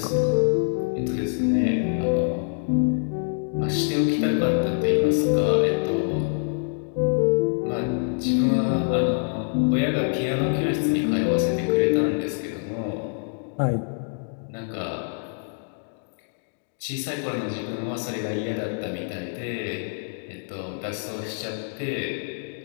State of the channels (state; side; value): silent; right; 62 dB below the other